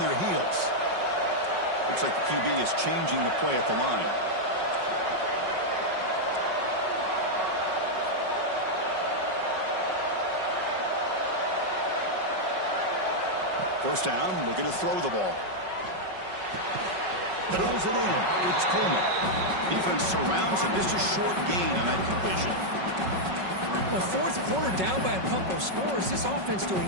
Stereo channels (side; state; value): left; late; 5.4 ms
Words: heels. Looks like the QB is changing the play at the line. First down, looking to throw the ball. Throws it in. It's Coleman. Defense surrounds him. Just a short gain on that completion. Well, fourth quarter down by a couple of scores. This offense